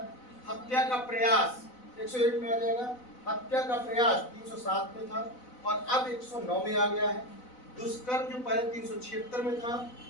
हत्या का प्रयास 101 में आ जाएगा। हत्या का प्रयास 307 में था, और अब 109 में आ गया है। दुष्कर्म जो पहले 376 में था,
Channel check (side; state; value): right; late; 4.0 ms